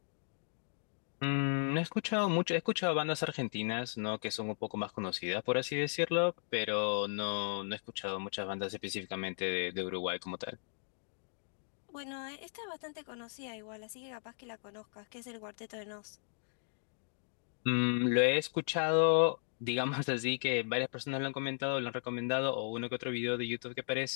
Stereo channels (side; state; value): right; silent; digital silence